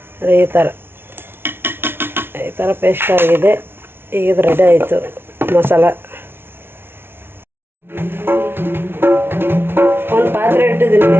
ಈ ಥರ ಪೇಸ್ಟ್ ಆಗಿದೆ. ಈಗ ಇದು ರೆಡಿ ಆಯಿತು ಮಸಾಲ. ಒಂದು ಪಾತ್ರೆ ಇಟ್ಟಿದ್ದೀನಿ.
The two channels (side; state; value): left; late; 0.11 ms